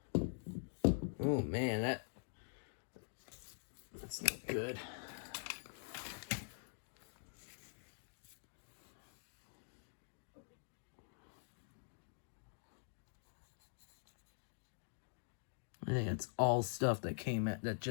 Oh man, that's not good. I think it's all stuff that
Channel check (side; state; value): right; silent; digital silence